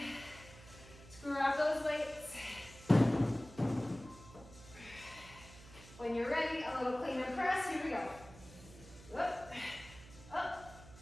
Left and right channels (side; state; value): right; noise; hum, 18 dB below the sound